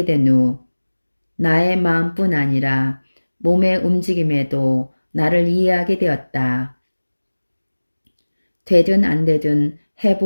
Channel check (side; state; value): both; inverted; correlation -1.00